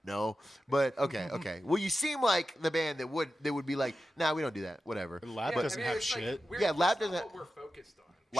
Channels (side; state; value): both; normal; correlation 0.92